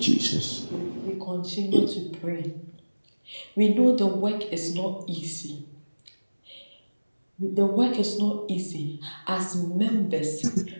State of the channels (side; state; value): both; inverted; correlation -1.00